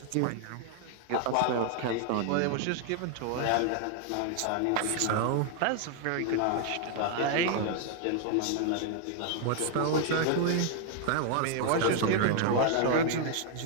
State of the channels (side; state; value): both; different; correlation 0.00